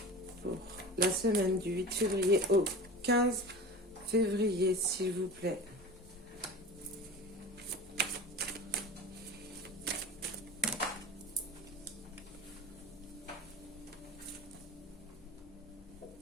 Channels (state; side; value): normal; both; correlation 0.34